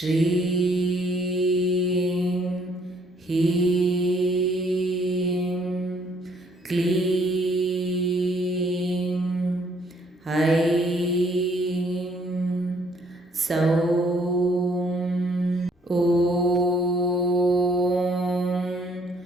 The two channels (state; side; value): normal; both; correlation 0.65